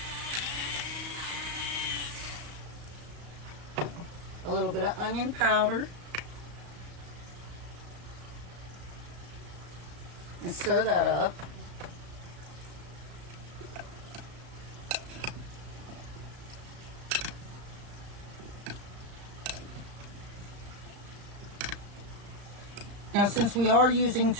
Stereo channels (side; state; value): left; late; 35 ms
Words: A little bit of onion powder. And stir that up. Now, since we are using